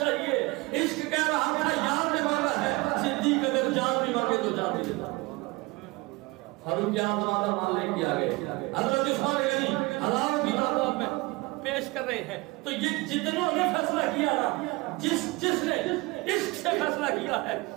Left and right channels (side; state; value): left; quieter; 23.7 dB